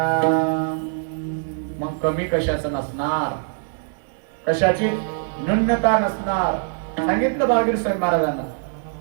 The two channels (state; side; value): silent; left; digital silence